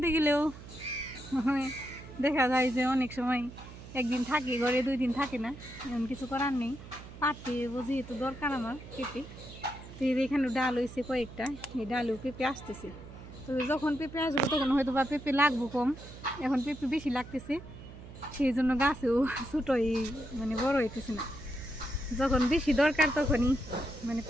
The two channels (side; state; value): right; noise; hum, 15 dB below the sound